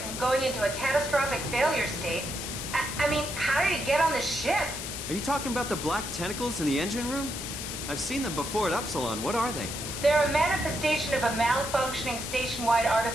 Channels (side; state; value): left; noise; hiss, 6 dB below the sound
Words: going into a catastrophic failure state. I mean, how did it get on the ship? Are you talking about the black tentacles in the engine room? I've seen them before at Upsilon. What are they? They're a manifestation of a malfunctioning station-wide